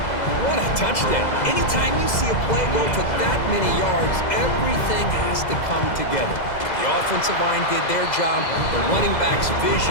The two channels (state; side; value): late; right; 2.0 ms